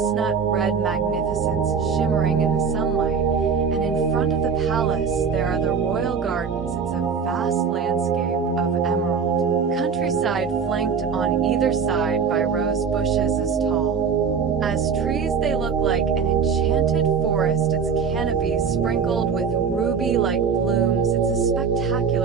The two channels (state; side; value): quieter; left; 6.1 dB